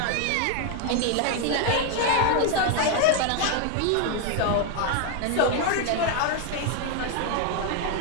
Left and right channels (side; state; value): both; different; correlation 0.01